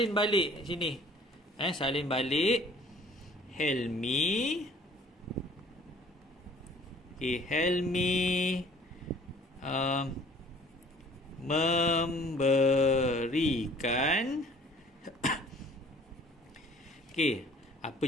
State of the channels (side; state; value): both; normal; correlation 0.53